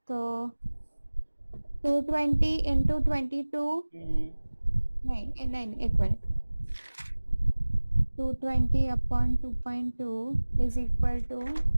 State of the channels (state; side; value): inverted; both; correlation -1.00